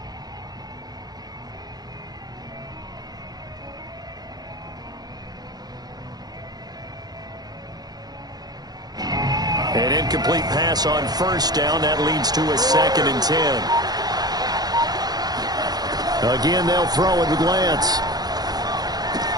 An incomplete pass on first down. That leads to a 2nd and 10. Again, they'll throw it with Lance.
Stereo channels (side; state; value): left; late; 0.19 ms